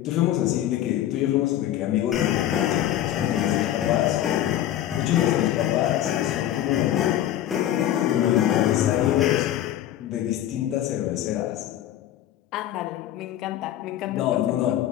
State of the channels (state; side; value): quieter; right; 12.4 dB